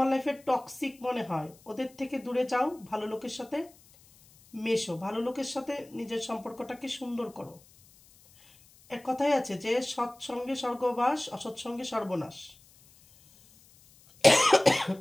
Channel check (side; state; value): left; noise; hiss, 27 dB below the sound